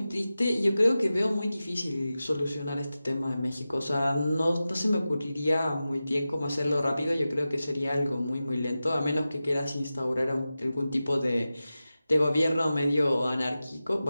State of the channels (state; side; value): inverted; both; correlation -0.94